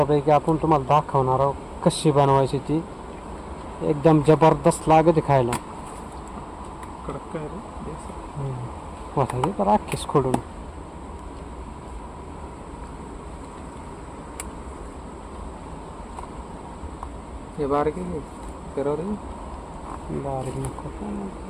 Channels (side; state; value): both; identical; correlation 1.00